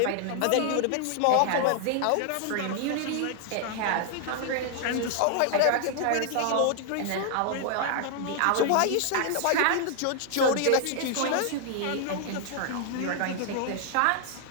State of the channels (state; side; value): different; both; correlation 0.00